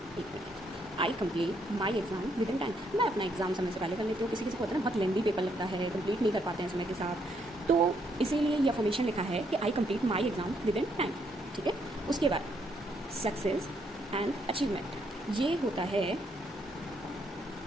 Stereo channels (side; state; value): both; normal; correlation 0.73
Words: एक मिनट, I complete my exam within time. मैं अपना एग्ज़ाम समय से पहले कर लेती हूँ। किसी किसी को होता है ना बहुत लेंदी पेपर लगता है, कंप्लीट नहीं कर पाते हैं समय के साथ, तो इसीलिए ये अफर्मेशन लिखा है कि आई complete my exam within time, ठीक है। उसके बाद सक्सेस एंड अचीवमेंट, ये होता है